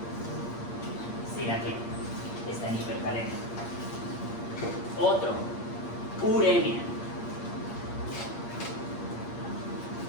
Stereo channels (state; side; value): late; right; 8.5 ms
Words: Sí, aquí está en hipercalemia. Otro, uremia.